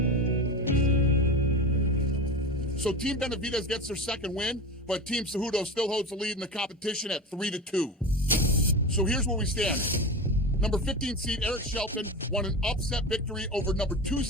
So Team Benavidez gets their second win, but Team Cejudo still holds the lead in the competition at 3-2. So here's where we stand. Number 15 seed Eric Shelton won an upset victory over number 2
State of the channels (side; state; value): both; normal; correlation 0.25